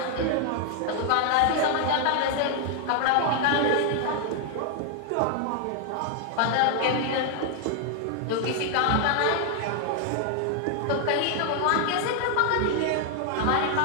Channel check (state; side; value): different; both; correlation 0.00